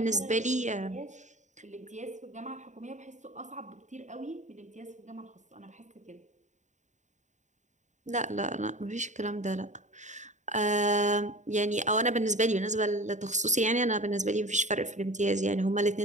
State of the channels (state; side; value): late; left; 0.35 ms